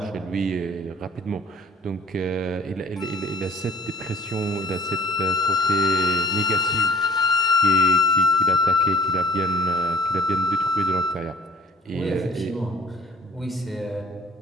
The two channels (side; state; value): both; normal; correlation 0.53